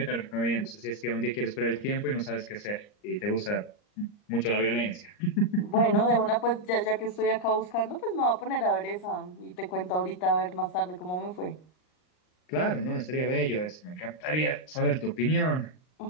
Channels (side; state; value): right; late; 39 ms